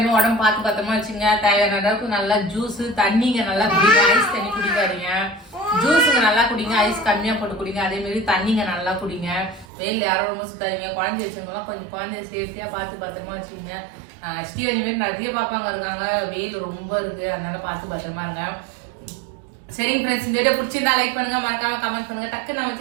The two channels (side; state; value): left; drops out; at 9.7 s